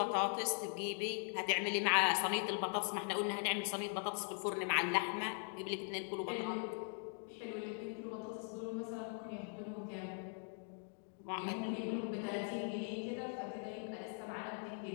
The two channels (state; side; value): silent; right; 50 dB below the other